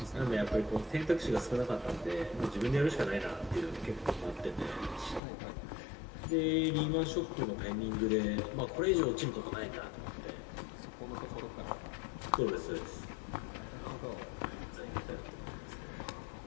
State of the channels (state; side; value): drops out; right; at 5.2 s